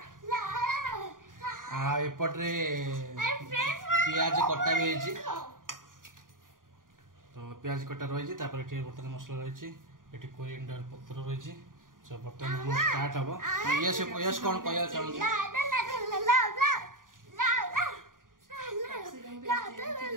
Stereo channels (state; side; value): late; left; 0.89 ms